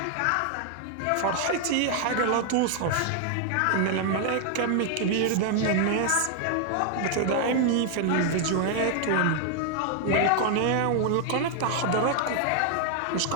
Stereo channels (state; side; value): different; both; correlation 0.00